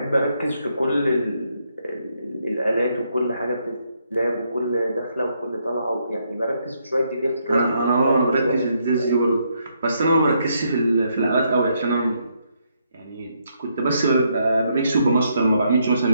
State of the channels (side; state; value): both; inverted; correlation -0.75